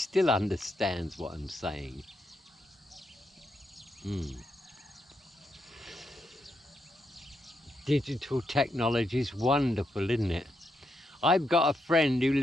understands what I'm saying. Digital technology is wonderful, isn't it? I've got a friend who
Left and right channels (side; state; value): both; normal; correlation 0.81